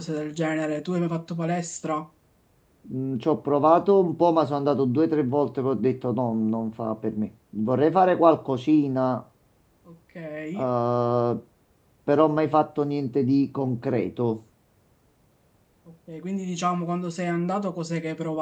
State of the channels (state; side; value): identical; both; correlation 1.00